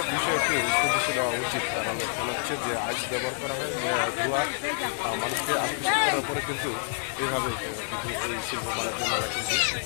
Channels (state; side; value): silent; right; digital silence